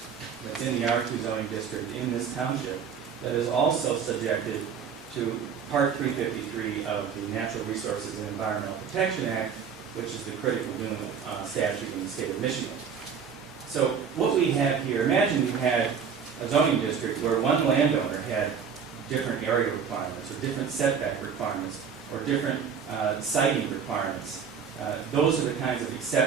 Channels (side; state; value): left; quieter; 6.8 dB